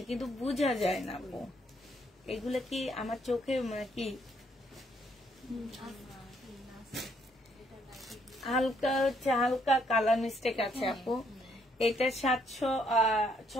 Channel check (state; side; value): normal; both; correlation 0.70